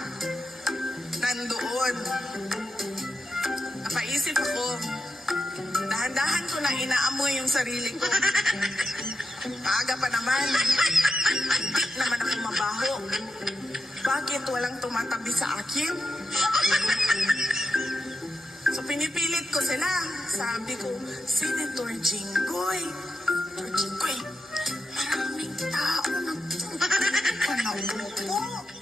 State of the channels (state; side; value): normal; both; correlation 0.88